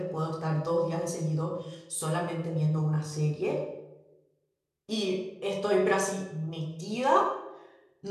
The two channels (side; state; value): both; identical; correlation 1.00